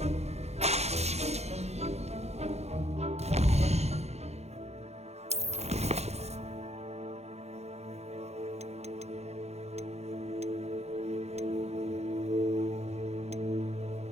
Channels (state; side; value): late; left; 0.31 ms